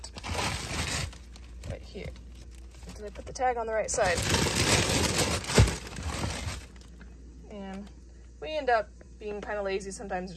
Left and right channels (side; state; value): both; identical; correlation 1.00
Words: right here. Did I put the tag on the right side? And we end up being kind of lazy sometimes,